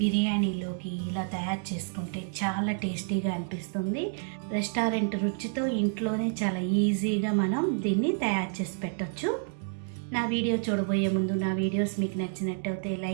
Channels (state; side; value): silent; left; digital silence